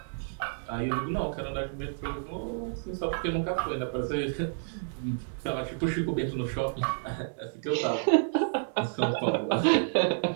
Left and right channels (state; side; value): silent; left; digital silence